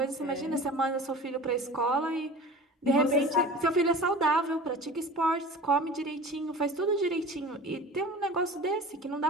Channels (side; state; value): both; normal; correlation 0.38